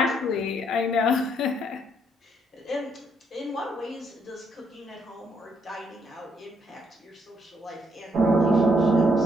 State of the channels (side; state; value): both; normal; correlation 0.72